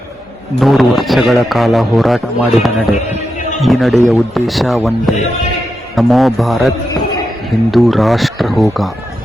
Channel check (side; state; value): both; normal; correlation 0.87